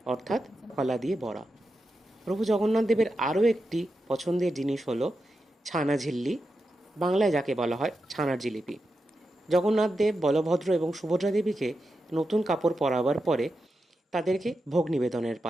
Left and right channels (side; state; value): both; normal; correlation 0.88